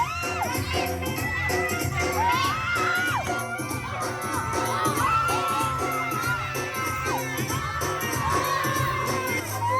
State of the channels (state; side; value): identical; both; correlation 1.00